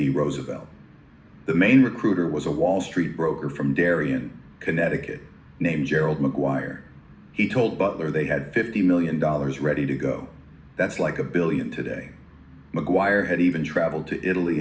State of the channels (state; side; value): identical; both; correlation 1.00